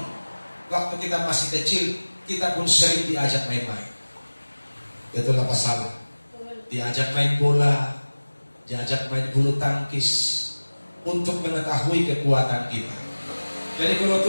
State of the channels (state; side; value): inverted; both; correlation -1.00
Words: waktu kita masih kecil, kita pun sering diajak main-main. Betul apa salah? Diajak main bola, diajak main bulu tangkis, untuk mengetahui kekuatan kita. Jadi kalau